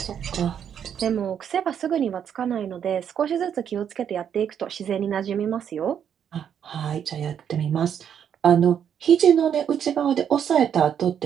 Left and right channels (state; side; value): quieter; left; 8.6 dB